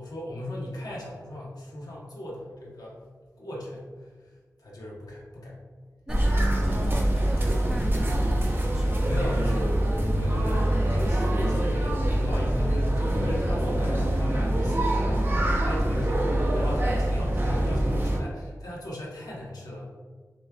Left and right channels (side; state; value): both; normal; correlation 0.95